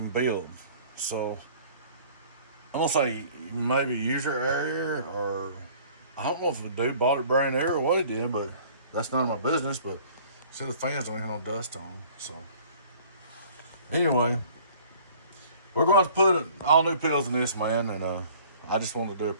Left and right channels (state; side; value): inverted; both; correlation -0.51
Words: build, so I'm gonna say maybe user error, or I don't know if the dude bought it brand new or what he did, but that's none of my business. But see, the fans don't even have no dust on them. So anyway, we're going to put all new pills in this, man, and I just wanted to do a